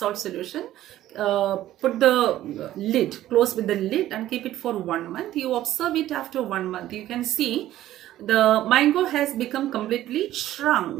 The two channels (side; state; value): left; quieter; 13.7 dB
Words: solution. Put the lid, close with the lid, and keep it for 1 month. You observe it after 1 month. You can see the mango has become completely